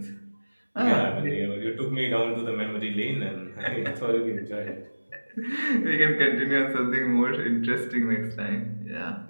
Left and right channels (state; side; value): inverted; both; correlation -1.00